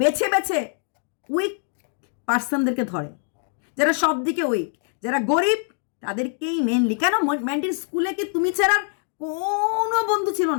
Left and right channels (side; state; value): right; silent; 58 dB below the other